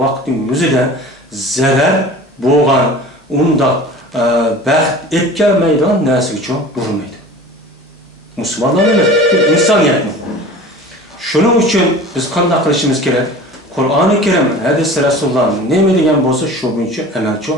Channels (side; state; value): both; normal; correlation 0.40